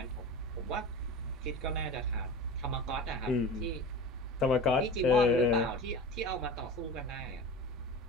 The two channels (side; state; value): both; normal; correlation 0.33